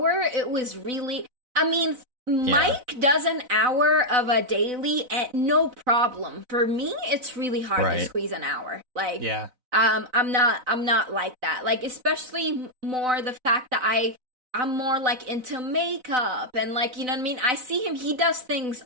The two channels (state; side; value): late; left; 4.0 ms